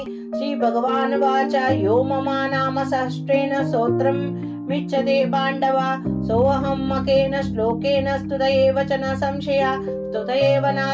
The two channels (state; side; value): identical; both; correlation 1.00